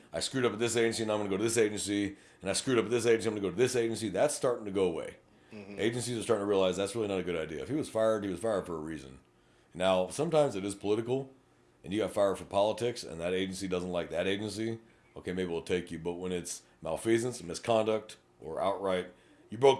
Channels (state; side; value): identical; both; correlation 1.00